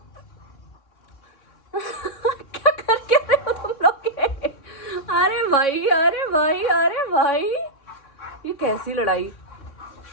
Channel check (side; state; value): right; late; 3.6 ms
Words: क्या करके रहे हो तुम लोग के? अरे भाई, अरे भाई, अरे भाई, ये कैसी लड़ाई?